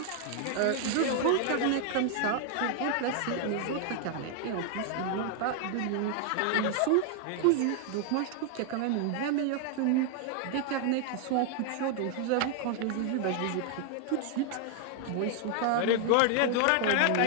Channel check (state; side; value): different; both; correlation 0.00